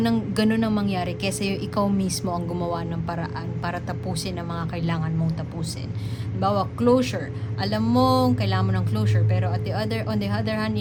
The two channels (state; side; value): identical; both; correlation 1.00